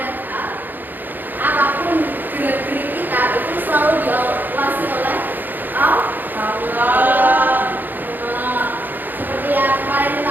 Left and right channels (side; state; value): left; late; 0.088 ms